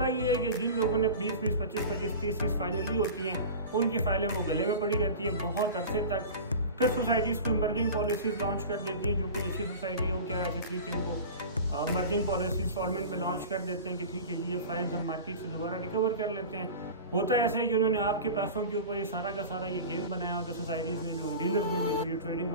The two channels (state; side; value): inverted; both; correlation -0.33